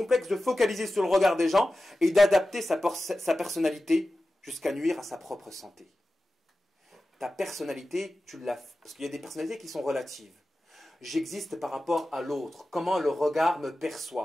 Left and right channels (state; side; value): normal; both; correlation 0.94